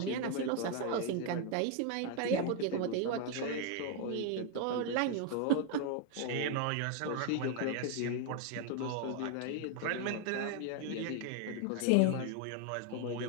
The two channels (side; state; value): both; different; correlation 0.00